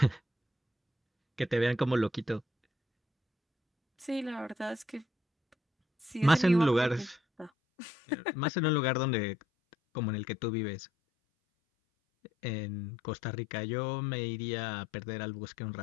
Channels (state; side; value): drops out; right; at 7.5 s